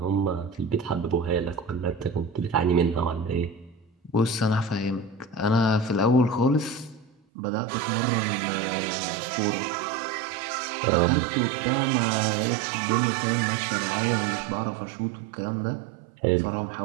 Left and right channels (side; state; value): left; drops out; at 7.1 s